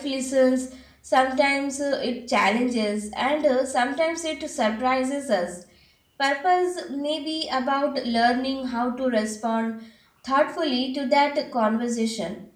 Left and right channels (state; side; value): identical; both; correlation 1.00